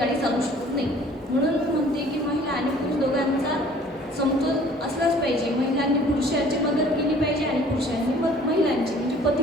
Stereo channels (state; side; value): normal; both; correlation 0.53